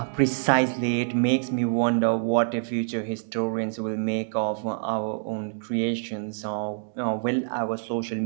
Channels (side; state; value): left; silent; digital silence